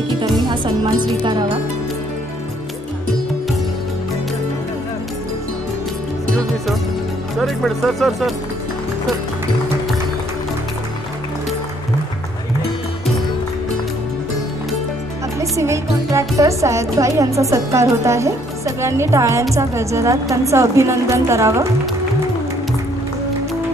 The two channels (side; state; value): both; normal; correlation 0.65